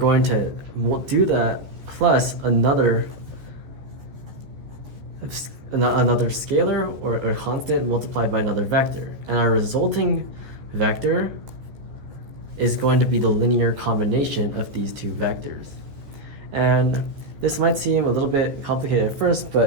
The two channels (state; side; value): late; left; 14 ms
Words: to do that plus another scalar or a constant multiplied by another vector. And our resulting vector is going to be the linear combination of these two vectors. And this might seem a little bit complicated at first,